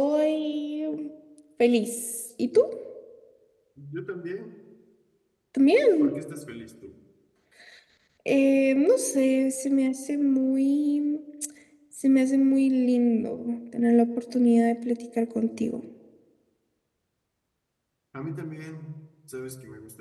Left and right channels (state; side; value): identical; both; correlation 1.00